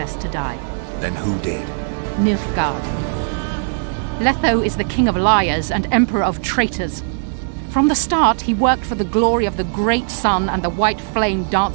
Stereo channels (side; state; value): left; silent; digital silence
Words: to die. Then who did? Nilfgaard. Letho is the king of liars and emperor of traitors. From the start, he worked for the glory of the great sun and the white flame